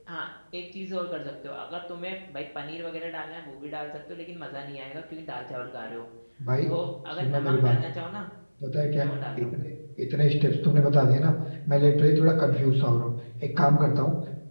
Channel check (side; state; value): both; inverted; correlation -1.00